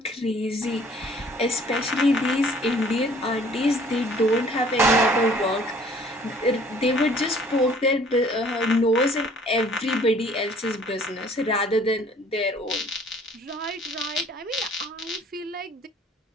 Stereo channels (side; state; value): both; normal; correlation 0.55